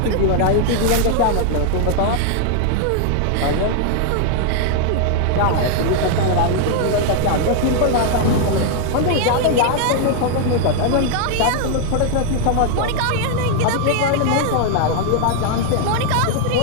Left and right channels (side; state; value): both; different; correlation 0.00